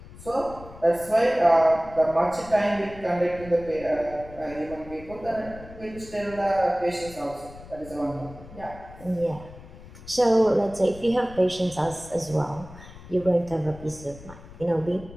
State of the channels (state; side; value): noise; left; rumble, 17 dB below the sound